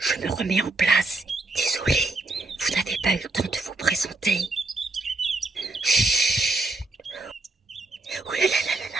me remets en place. Désolée, vous n'avez pas eu le temps de vous présenter. Chut! Ouh là là là là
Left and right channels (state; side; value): quieter; left; 3.1 dB